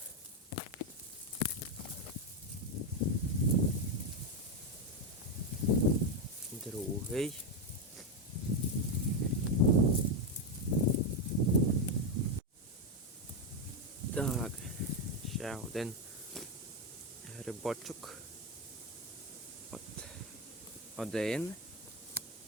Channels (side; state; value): both; normal; correlation 0.07